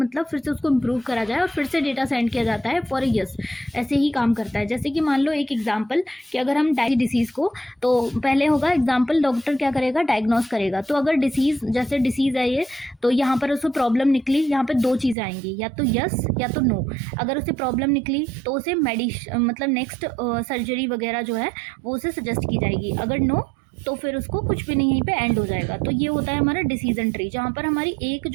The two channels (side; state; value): left; drops out; at 15.2 s